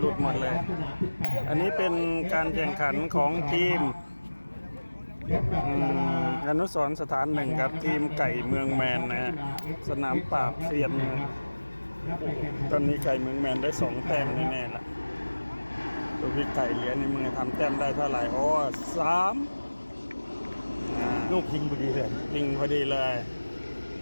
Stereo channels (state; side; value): inverted; both; correlation -1.00